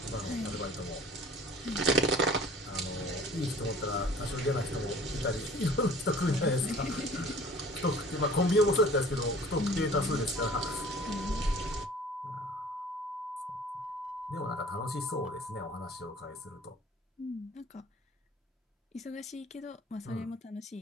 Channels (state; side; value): normal; both; correlation 0.48